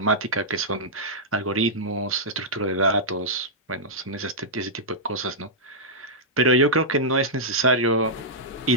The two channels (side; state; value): both; normal; correlation -0.10